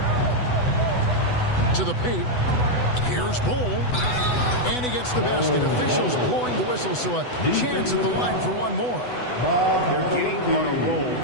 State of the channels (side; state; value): right; late; 8.1 ms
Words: To the paint. Here's Bull. And he gets the basket. Officials blowing the whistle, so a chance at the line for one more. They're getting on a roll